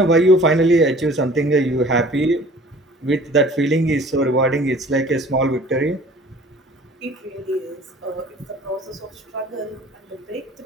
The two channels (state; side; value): normal; both; correlation 0.49